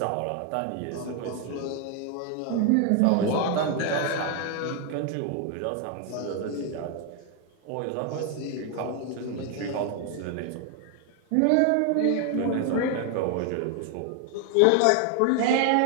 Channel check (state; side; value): different; both; correlation 0.01